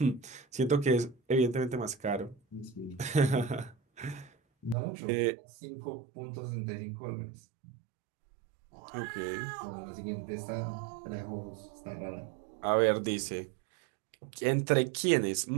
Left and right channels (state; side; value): drops out; left; at 4.8 s